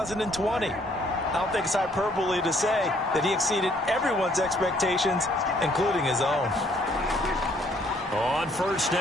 I don't think it's hyperbole to say that he exceeded everyone's expectations, including his own. On 1st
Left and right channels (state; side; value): normal; both; correlation 0.64